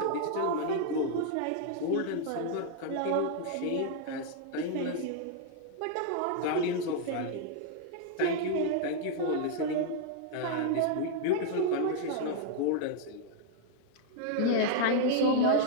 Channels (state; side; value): different; both; correlation -0.01